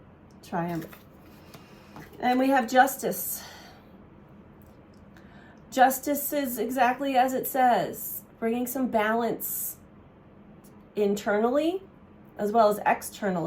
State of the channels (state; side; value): identical; both; correlation 1.00